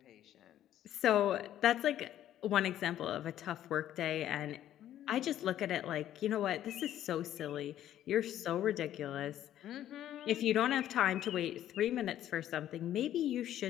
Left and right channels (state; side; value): quieter; right; 11.9 dB